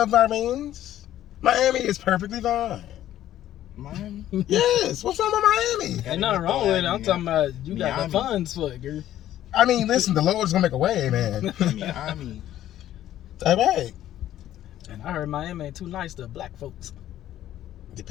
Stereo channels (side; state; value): right; quieter; 12.6 dB